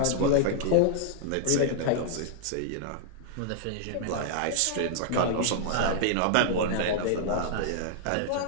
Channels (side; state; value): both; different; correlation -0.01